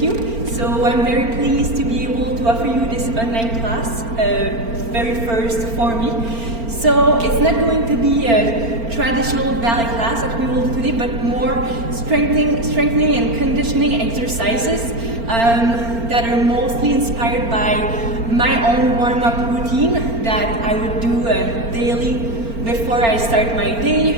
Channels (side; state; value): left; late; 4.4 ms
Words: you. So I'm very pleased to be able to offer you this online class, very first for me. So it's not going to be a traditional ballet class that we will do today, but more strengthening and conditioning exercises that are mostly inspired by my own warm-up routine that I would do daily before I start my